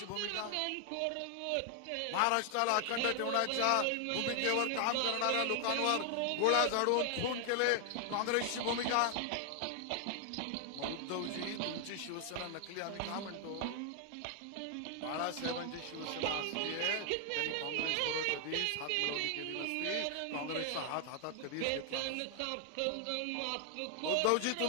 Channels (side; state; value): both; different; correlation 0.00